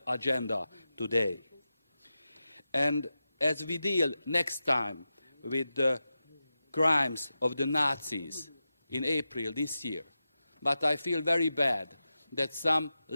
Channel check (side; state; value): both; inverted; correlation -0.92